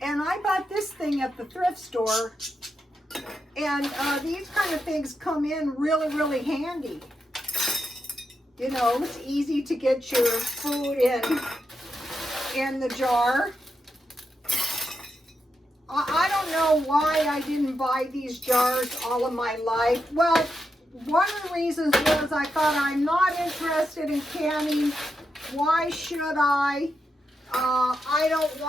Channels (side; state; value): both; normal; correlation 0.86